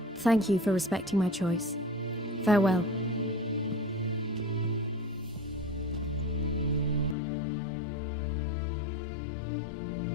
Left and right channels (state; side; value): drops out; right; at 7.2 s